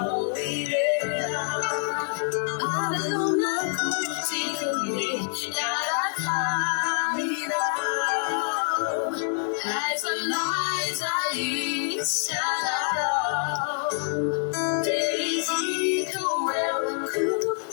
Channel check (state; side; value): silent; right; 61 dB below the other